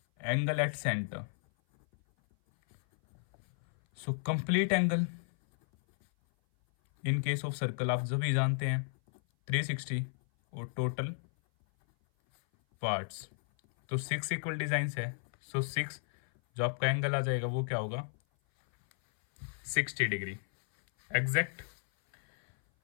angle at centre, so complete angle in case of circle आप सभी जानते हैं 360 और टोटल पार्ट्स तो 6 इक्वल डिजाइंस है। सो 6 जो आपका एंगल आ जाएगा वो क्या होगा 60 डिग्री एग्जैक्ट।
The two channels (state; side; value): silent; right; 55 dB below the other